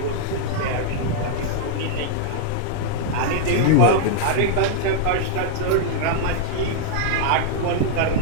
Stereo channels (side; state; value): both; different; correlation -0.01